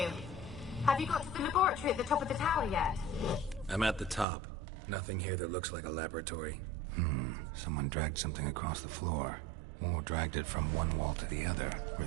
Have you got to the laboratory at the top of the tower yet? I'm at the top. Nothing here that looks like a laboratory. Someone dragged something across the floor. Or dragged it from one wall to the other,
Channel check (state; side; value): drops out; left; at 4.2 s